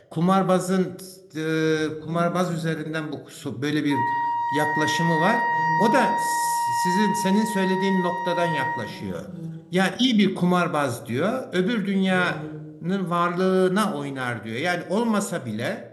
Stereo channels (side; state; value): both; identical; correlation 1.00